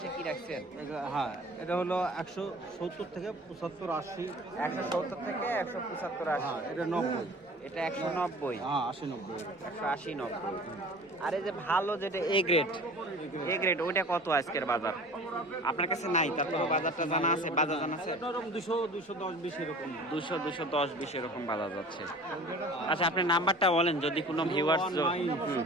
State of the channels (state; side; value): normal; both; correlation 0.43